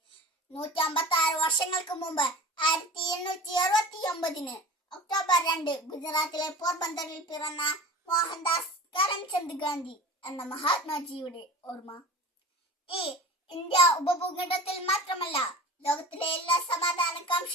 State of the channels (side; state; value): both; normal; correlation 0.37